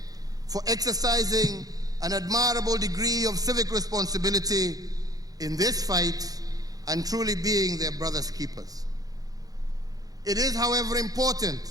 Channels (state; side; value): late; left; 0.18 ms